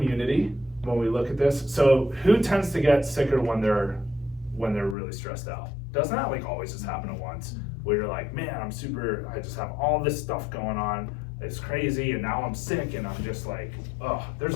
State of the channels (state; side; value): drops out; right; at 5.0 s